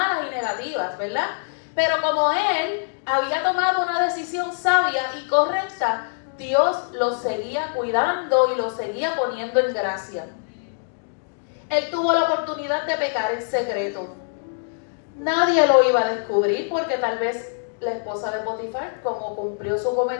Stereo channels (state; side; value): silent; right; digital silence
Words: y negativas, ¿verdad? Pero como él había tomado una decisión sabia y correcta, Dios lo seguía cuidando y lo seguía poniendo en gracia. Él tuvo la oportunidad de pecar en secreto. Nadie lo iba a descubrir porque tal vez la esposa de Potifar, como cumplió su